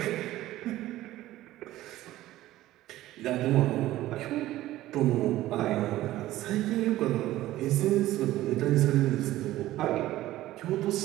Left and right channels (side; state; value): left; quieter; 15.4 dB